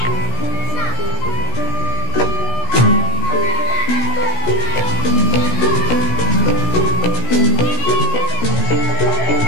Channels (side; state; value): right; late; 17 ms